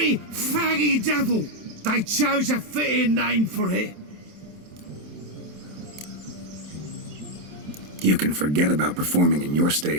faggy devil. They chose a fitting name for it. You can forget about performing in your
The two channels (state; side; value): late; left; 27 ms